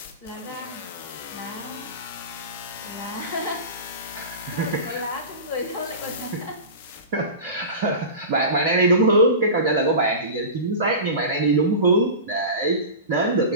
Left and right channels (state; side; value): inverted; both; correlation -0.31